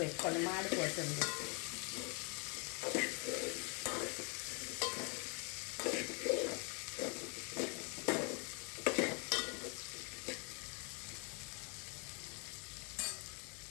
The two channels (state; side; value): quieter; right; 35.6 dB